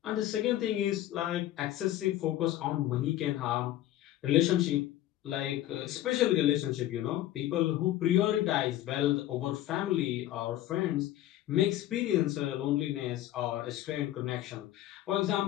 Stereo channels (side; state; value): right; quieter; 13.7 dB